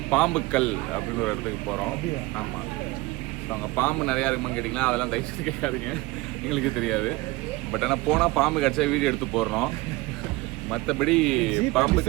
பாம்புக்கல் அப்படின்னு ஒரு இடத்துக்கு போகிறோம். ஆமாம், அங்கே பாம்பு நிறையா இருக்குமான்னு கேட்டிங்கன்னா அதெல்லாம் தயவுசெய்து கேட்காதீங்க, எங்களுக்கு தெரியாது. பட் ஆனால் போனால் பாம்பு கிடச்சா வீடியோ எடுத்து போடுறோம். மற்றபடி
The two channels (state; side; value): quieter; left; 21.1 dB